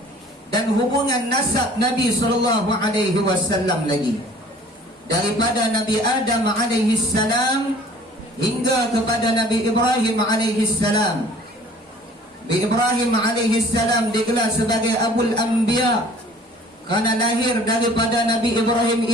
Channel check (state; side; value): normal; both; correlation 0.52